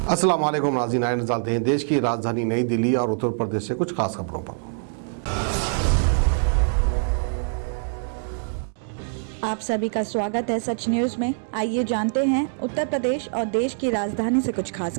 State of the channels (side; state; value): left; silent; digital silence